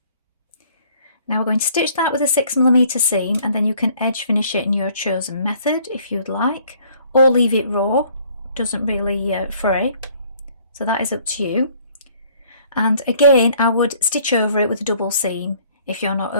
Now we're going to stitch that with a 6mm seam, and then you can edge finish it in your chosen method if you'd like, or leave it raw, doesn't really fray, so that is up to you. And again, I would stitch over it with a double seam if you're not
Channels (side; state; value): both; inverted; correlation -0.59